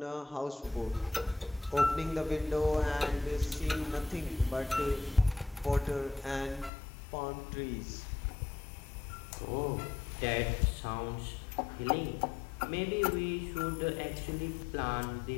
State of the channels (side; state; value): right; drops out; at 6.7 s